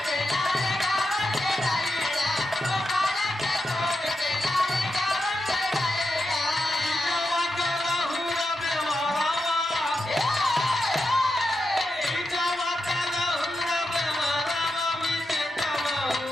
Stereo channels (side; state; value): both; normal; correlation 0.87